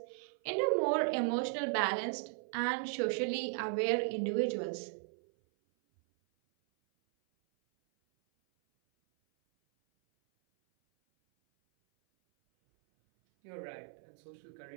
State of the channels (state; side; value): silent; left; 54 dB below the other